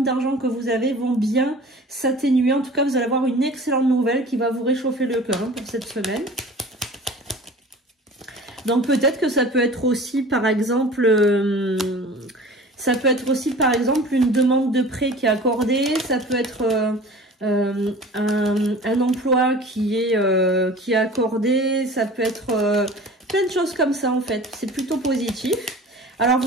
d'argent que vous avez vont bien s'atténuer. En tout cas, vous allez avoir une excellente nouvelle qui va vous réchauffer le cœur, hein, pour cette semaine. Donc, peut-être que ça peut être aussi, par exemple... une demande de prêt qui est accordée. Ça peut être un emploi qui est accordé. Ça peut être plein de choses comme ça en fait. C'est plutôt positif. Alors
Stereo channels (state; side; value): normal; both; correlation 0.42